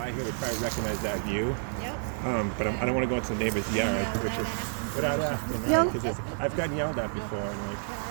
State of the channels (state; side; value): silent; left; digital silence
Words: here would probably recognize that view. Yep. But I don't want to go into the neighbor's yard, which is without asking, right? Because I've gotten yelled at before. And like,